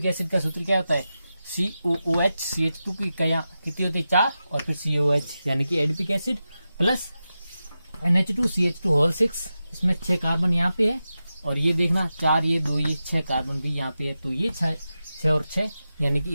एसिड का सूत्र क्या होता है, COOH CH2 की इकाइयां कितनी होती है, 4, और फिर COH, यानी कि adipic acid plus NH2 CH2 whole 6, इसमें 6 कार्बन यहाँ पे है, और ये देखना 4 ये 2 ये 6 कार्बन भी यहाँ पे है, तो ये 6 और 6, यानी कि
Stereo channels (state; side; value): inverted; both; correlation -0.92